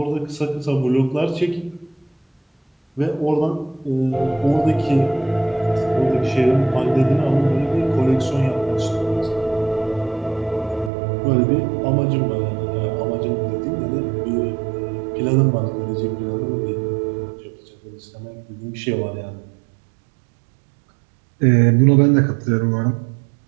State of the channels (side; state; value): left; drops out; at 10.9 s